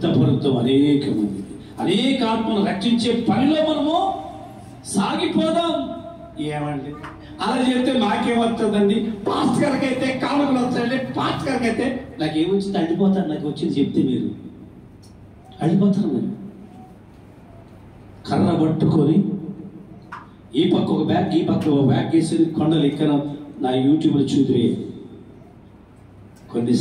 అనేక మంది, అనేక ఆత్మను రక్షించే పనిలో మనము సాగిపోదాం. ఏమండి అలా చెప్తే నాకేమవుతుందండి? పాస్టర్ గారికి అయితే కానుకలు వస్తాయండి, పాస్టర్ గారికి అయితే నాకేమొచ్చింది అడిపోతాను. నాకు వచ్చింది చెప్తే మీరు అడిపోతారు. మీరు కర్ర పట్టుకొని ఈ పక్క ఒక బ్యాగ్, ఈ పక్క ఒక బ్యాగ్ వేసి కొండలు ఎక్కన నా యూట్యూబ్లో చూద్దురే. కొన్ని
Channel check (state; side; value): identical; both; correlation 1.00